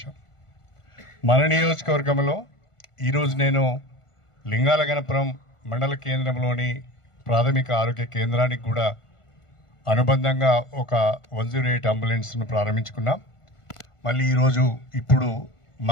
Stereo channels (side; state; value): right; late; 1.5 ms